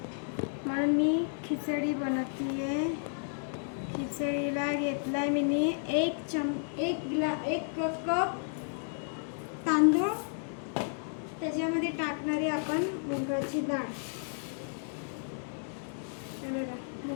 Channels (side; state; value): right; silent; digital silence